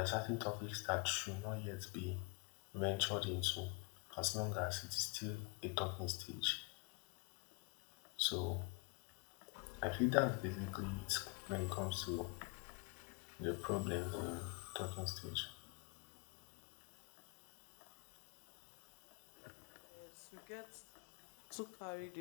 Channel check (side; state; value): right; quieter; 31.1 dB